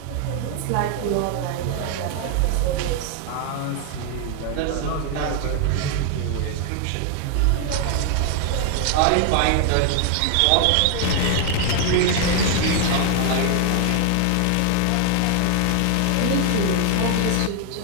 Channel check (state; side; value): different; both; correlation 0.00